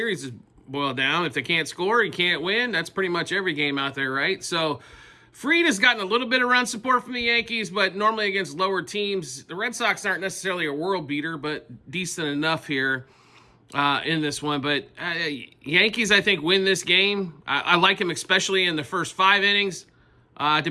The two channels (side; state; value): both; identical; correlation 1.00